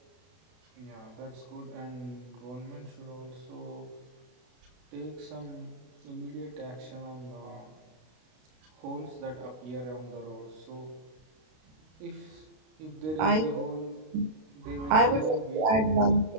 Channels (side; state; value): left; late; 32 ms